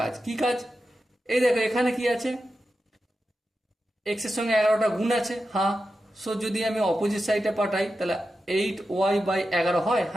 কি কাজ? এই দেখো এখানে কি আছে, এক্স এর সঙ্গে 11টা গুণ আছে, হ্যাঁ। সো যদি আমি অপোজিট সাইডে পাঠাই তাহলে 8y/11 হয়,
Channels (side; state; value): both; normal; correlation 0.91